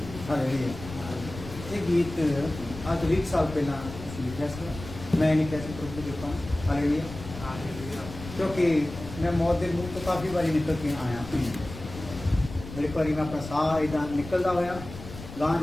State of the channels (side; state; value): left; noise; rumble, 12 dB below the sound